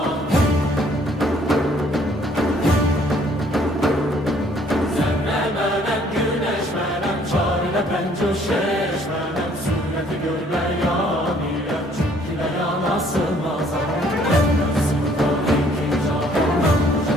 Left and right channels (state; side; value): normal; both; correlation 0.62